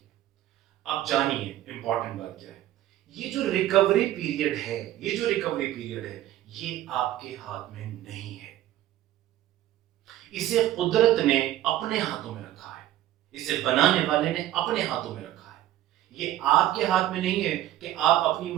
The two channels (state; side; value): quieter; left; 13.5 dB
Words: अब जानिए इंपॉर्टेंट बात क्या है। ये जो रिकवरी पीरियड है, ये जो रिकवरी पीरियड है, ये आपके हाथ में नहीं है। इसे कुदरत ने अपने हाथों में रखा है, इसे बनाने वाले ने अपने हाथों में रखा है। ये आपके हाथ में नहीं है कि आप अपनी